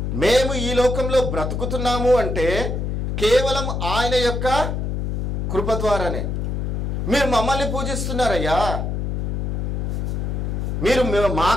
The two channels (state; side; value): noise; left; hum, 1 dB below the sound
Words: మేము ఈ లోకంలో బ్రతుకుతున్నాము అంటే కేవలం ఆయన యొక్క కృప ద్వారానే. మీరు మమ్మల్ని పూజిస్తున్నారయ్యా, మీరు